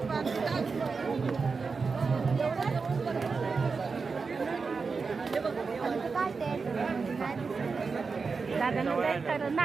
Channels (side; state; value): left; quieter; 4.8 dB